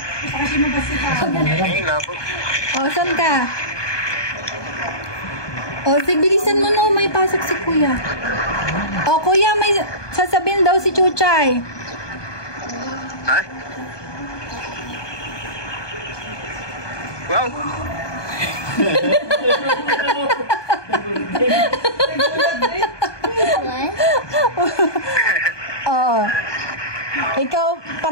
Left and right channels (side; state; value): right; late; 1.2 ms